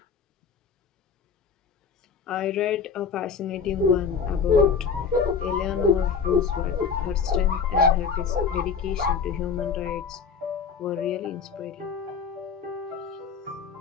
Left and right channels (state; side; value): quieter; right; 6.0 dB